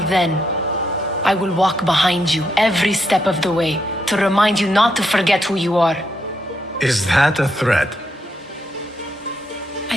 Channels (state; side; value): normal; both; correlation 0.79